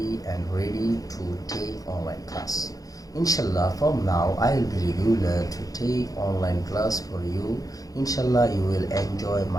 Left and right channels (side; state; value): right; late; 0.17 ms